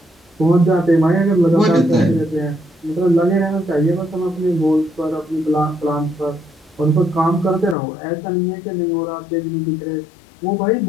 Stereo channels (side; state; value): right; drops out; at 7.8 s